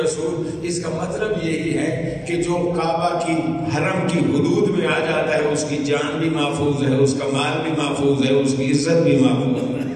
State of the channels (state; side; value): identical; both; correlation 1.00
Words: اس کا مطلب یہی ہے کہ جو کعبہ کی حرم کی حدود میں آ جاتا ہے اس کی جان بھی محفوظ ہے، اس کا مال بھی محفوظ ہے، اس کی عزت بھی محفوظ ہے.